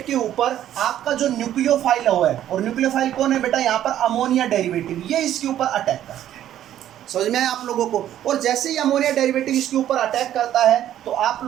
के ऊपर आपका जो न्यूक्लियोफाइल हुआ है, और न्यूक्लियोफाइल कौन है बेटा? यहाँ पर अमोनिया डेरिवेटिव, ये इसके ऊपर अटैक करता है। समझ में आया आप लोगों को? और जैसे ही अमोनिया डेरिवेटिव इसके ऊपर अटैक करता है तो आप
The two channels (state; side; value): quieter; left; 11.7 dB